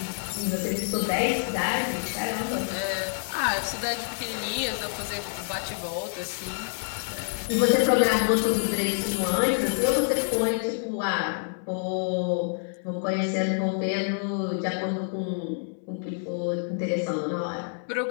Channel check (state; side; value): silent; right; 60 dB below the other